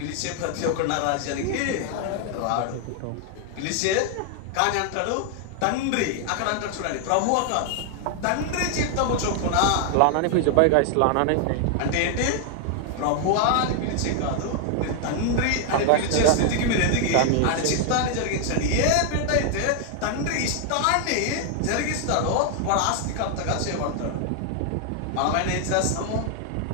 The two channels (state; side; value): different; both; correlation 0.00